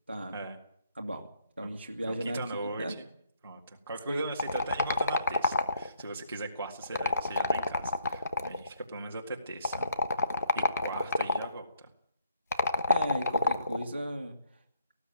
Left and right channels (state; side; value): inverted; both; correlation -0.67